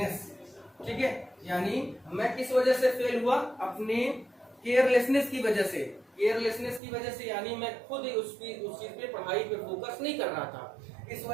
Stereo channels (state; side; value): drops out; left; at 6.8 s